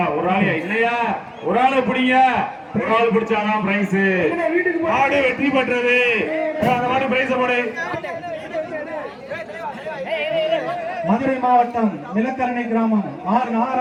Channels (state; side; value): identical; both; correlation 1.00